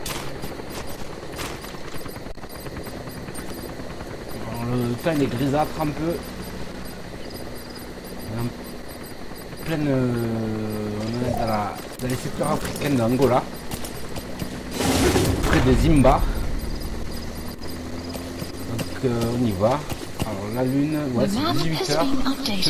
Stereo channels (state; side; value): identical; both; correlation 1.00